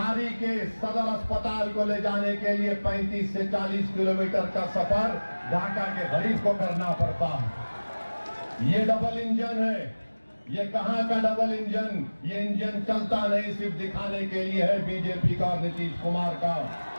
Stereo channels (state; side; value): inverted; both; correlation -1.00